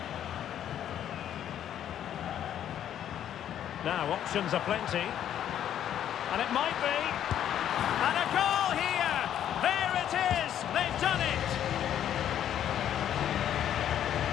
Now, options are plenty. And it might be. And a goal here! There it is! They've done it!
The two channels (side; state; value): right; quieter; 10.4 dB